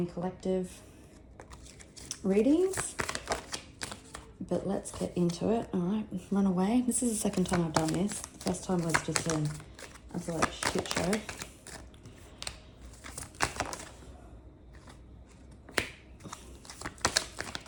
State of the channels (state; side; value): identical; both; correlation 1.00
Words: collective readings. But let's get into it. All right, run away. This is the second time I've done this. The first time was just an absolute shit show.